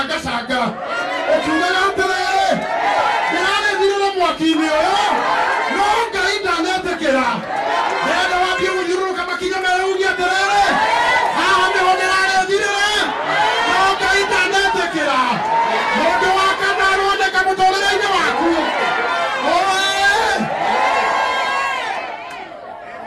ũkiugaga atĩrĩrĩ ndĩrarethirĩra mwaki-inĩ ũyũ, no Ngai ndanetĩkĩra. Ndĩrenda wambie gũthiũrũrũka makinya merĩ uge atĩrĩrĩ haha nĩho ndĩrarethirĩra, no Ngai ndanetĩkĩra. Mũndũ wa kana aroneka mũtũrĩre-inĩ waku.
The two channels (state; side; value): identical; both; correlation 1.00